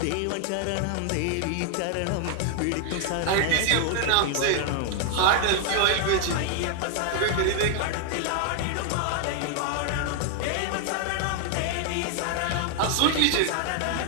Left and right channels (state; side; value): different; both; correlation 0.00